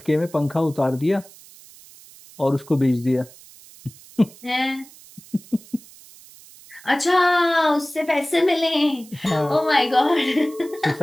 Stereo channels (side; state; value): right; noise; hiss, 22 dB below the sound